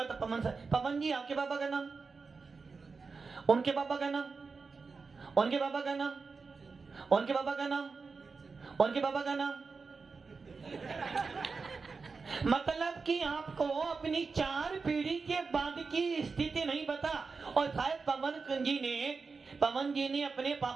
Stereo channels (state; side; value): quieter; left; 4.6 dB